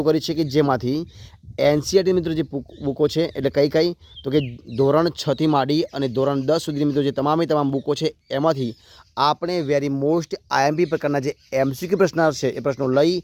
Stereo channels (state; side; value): identical; both; correlation 1.00